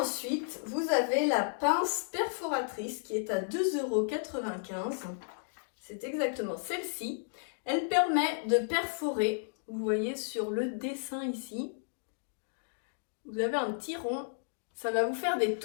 vous avez la pince perforatrice qui est à 2,95 €. C'est exactement celle-ci. Elle permet de perforer. Vous voyez sur le dessin ici, vous avez un petit rond, ça va vous faire des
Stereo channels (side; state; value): right; silent; digital silence